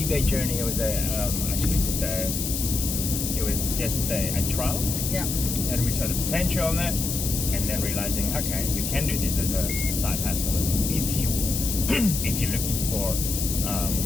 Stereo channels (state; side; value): noise; left; hiss, 3 dB below the sound